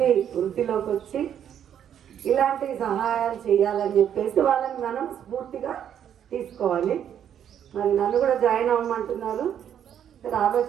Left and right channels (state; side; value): quieter; left; 9.4 dB